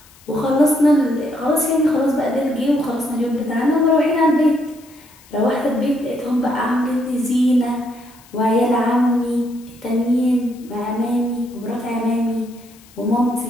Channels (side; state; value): left; noise; hiss, 26 dB below the sound